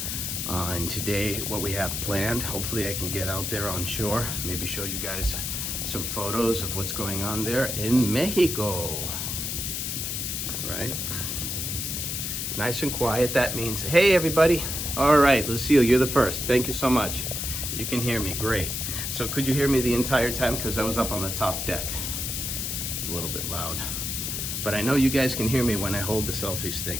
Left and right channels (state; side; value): noise; left; hiss, 3 dB below the sound